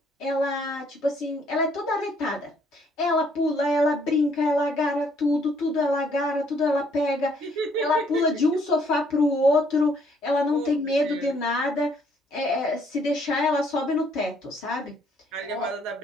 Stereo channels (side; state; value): both; normal; correlation 0.66